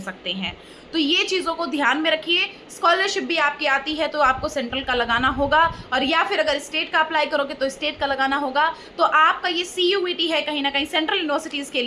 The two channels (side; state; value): both; identical; correlation 1.00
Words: हैं। तो ये चीज़ों को ध्यान में रखिए। स्कॉलरशिप भी आपकी आती है तो आपको सेंट्रल का लगाना होगा, और या फिर अगर स्टेट का अप्लाई करोगे तो स्टेट का लगाना होगा। तो आपका ये CUET है, कहीं ना कहीं सेंट्रल यूनिवर्सिटीज़ के